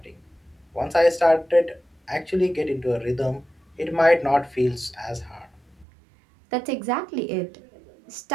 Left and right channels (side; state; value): left; drops out; at 5.9 s